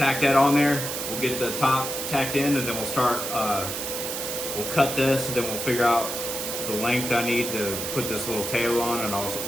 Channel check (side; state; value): right; noise; hiss, 4 dB below the sound